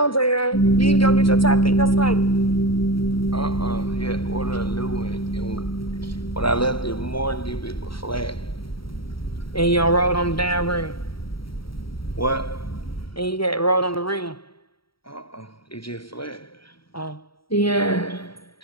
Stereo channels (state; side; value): late; right; 0.74 ms